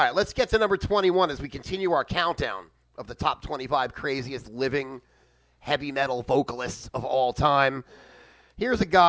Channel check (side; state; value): both; identical; correlation 1.00